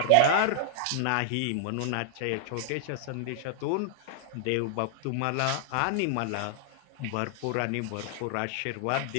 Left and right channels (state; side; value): different; both; correlation -0.01